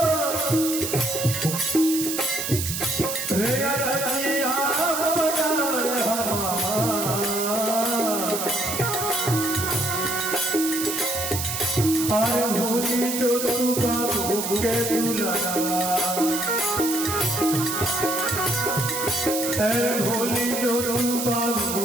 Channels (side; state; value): right; noise; hiss, 3 dB below the sound